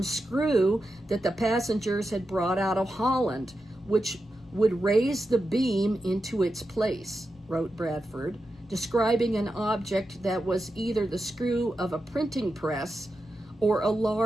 screw that the passengers had brought out of Holland, which would raise the beam into its place, wrote Bradford, describing an object that was either the screw of a printing press or a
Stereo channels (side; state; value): both; normal; correlation 0.89